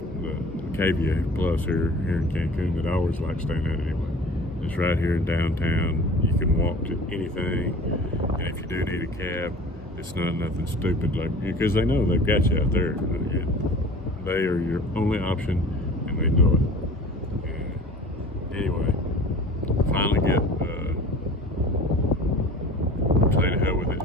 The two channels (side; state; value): both; normal; correlation 0.43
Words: Cavia Plus here in Cancun that I always like staying at anyway. It's right here in downtown. You can walk to anything, and if you do need a cab, it's not nothing stupid, like, because they know they've got you out there. They are your only option, and they know it. And anyway, finally get say to hell with it